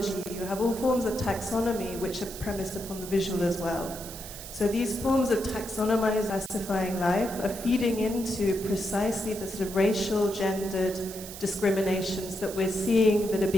you have all forms of taxonomy which are premised upon the visual as well. So these forms of taxonomized, classifying life are feeding into precisely the sort of racial, gendered discriminations that we're seeing that are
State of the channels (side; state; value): right; noise; hiss, 12 dB below the sound